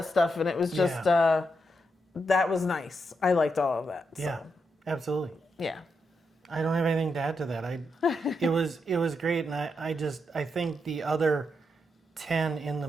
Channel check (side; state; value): both; normal; correlation 0.83